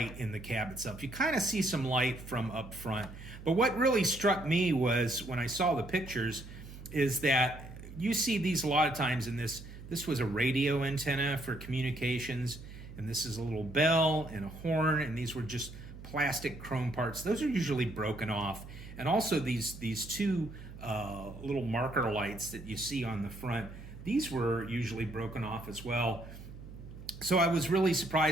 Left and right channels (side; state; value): right; noise; hum, 14 dB below the sound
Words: in the cab itself. You kind of see some light from up front. But what really struck me was when I saw the pictures is that you see these a lot of times in this. This was a radio antenna for communications, and this is a little bell and a horn, and these were just plastic chrome parts. Those are usually broken off. And also these two little marker lights that you see on the front, these were usually broken off as well. So I was really